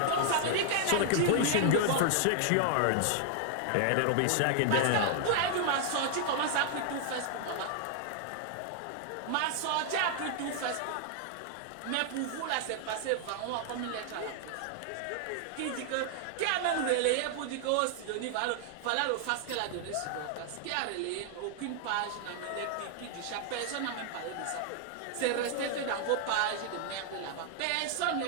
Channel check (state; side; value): different; both; correlation 0.00